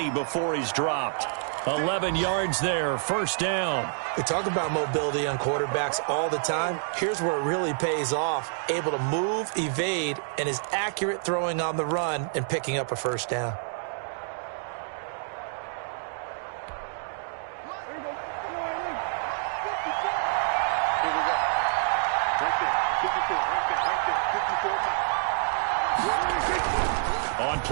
before he's dropped. 11 yards there, 1st down. We talk about mobility on quarterbacks all the time. Here's where it really pays off. Able to move, evade, and is accurate throwing on the run and picking up a 1st down. On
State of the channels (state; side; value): silent; left; digital silence